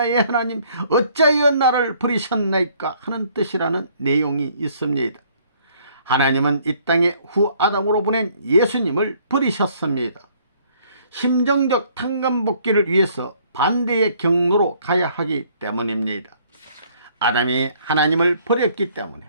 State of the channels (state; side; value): inverted; both; correlation -0.62